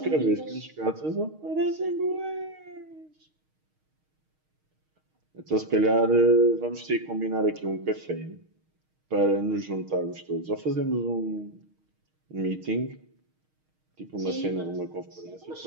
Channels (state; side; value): late; left; 6.4 ms